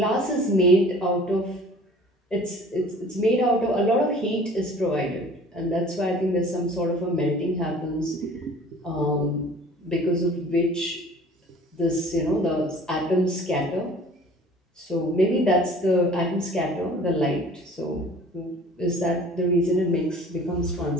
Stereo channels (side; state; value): both; normal; correlation 0.47